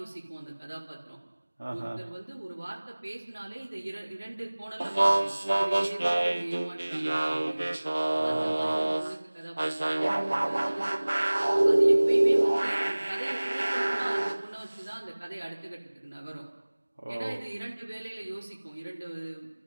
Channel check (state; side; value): inverted; both; correlation -1.00